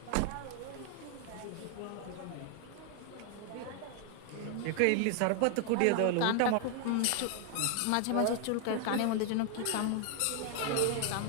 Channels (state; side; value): different; both; correlation 0.00